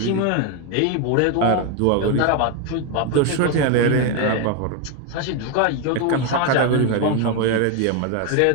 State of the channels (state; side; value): different; both; correlation 0.02